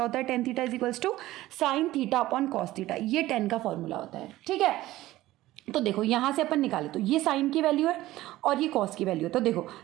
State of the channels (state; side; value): quieter; left; 16.3 dB